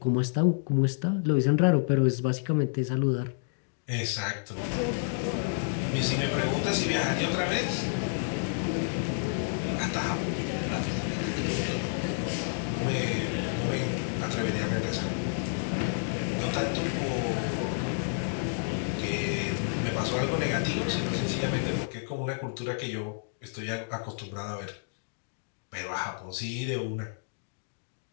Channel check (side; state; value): right; silent; digital silence